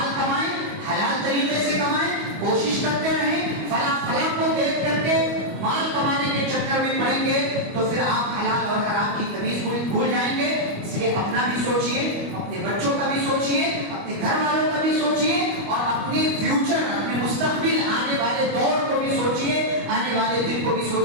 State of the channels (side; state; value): left; late; 25 ms